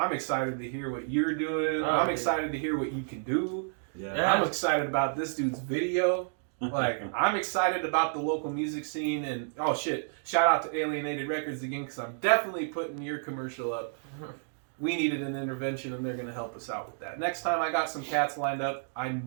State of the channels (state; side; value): silent; left; digital silence